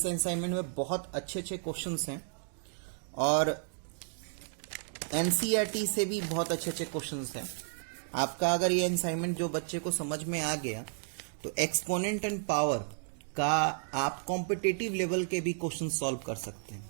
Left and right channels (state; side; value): silent; left; digital silence